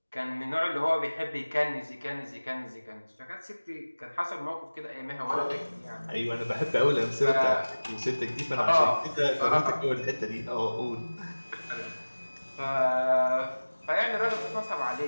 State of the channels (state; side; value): inverted; both; correlation -1.00